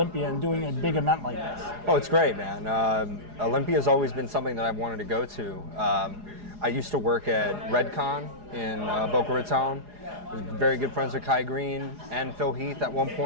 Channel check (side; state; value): left; late; 4.8 ms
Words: and doing a big event like this. Oh, it's great, man. Olympia has always been something that I've wanted to go to. I used to work at Redcon in Boca Raton. I was very good friends with Kai Green and Phil Heath at one